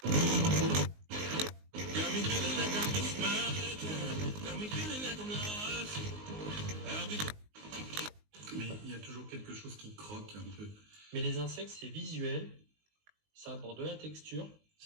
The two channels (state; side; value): late; left; 19 ms